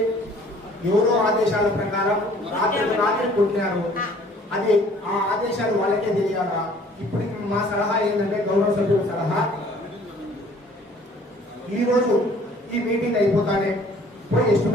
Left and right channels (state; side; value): normal; both; correlation 0.55